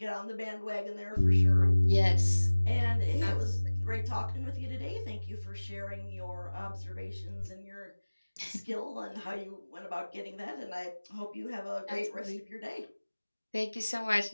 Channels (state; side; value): inverted; both; correlation -1.00